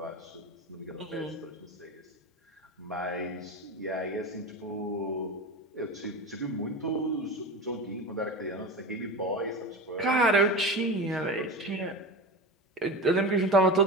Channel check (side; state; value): both; normal; correlation 0.27